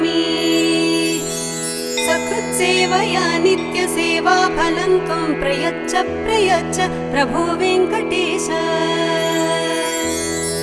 सकृत्सेवया नित्यसेवा फलं त्वं प्रयच्छ प्रयच्छ प्रभो वेङ्कटेश।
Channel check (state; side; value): identical; both; correlation 1.00